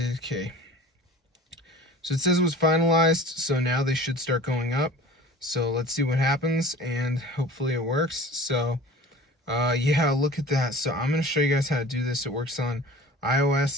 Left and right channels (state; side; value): normal; both; correlation 0.41